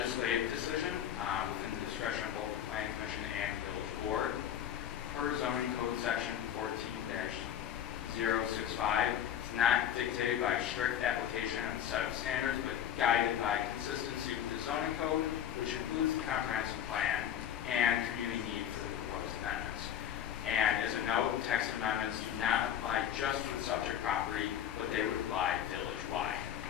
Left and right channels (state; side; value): quieter; right; 10.1 dB